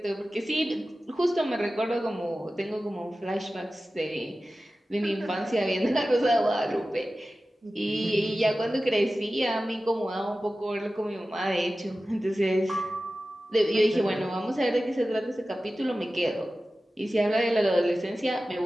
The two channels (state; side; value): normal; both; correlation 0.95